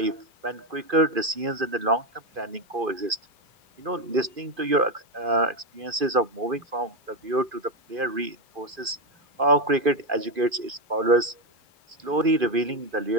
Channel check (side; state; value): left; late; 2.5 ms